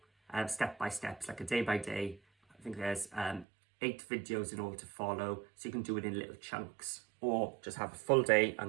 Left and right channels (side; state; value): left; drops out; at 3.5 s